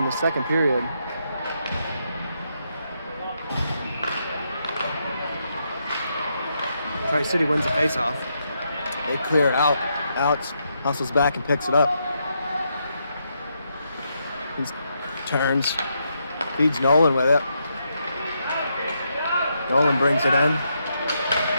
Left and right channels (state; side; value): inverted; both; correlation -0.80